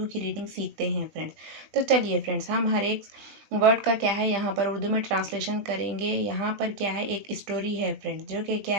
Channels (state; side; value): late; left; 20 ms